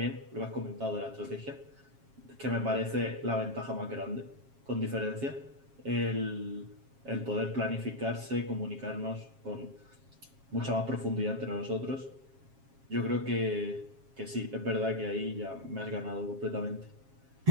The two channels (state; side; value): late; left; 7.4 ms